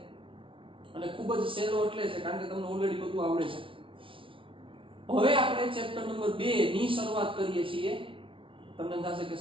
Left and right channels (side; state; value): left; late; 0.25 ms